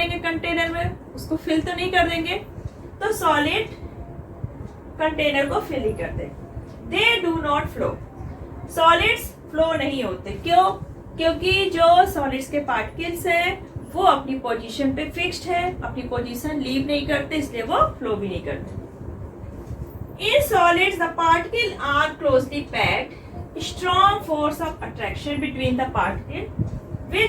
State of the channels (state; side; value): identical; both; correlation 1.00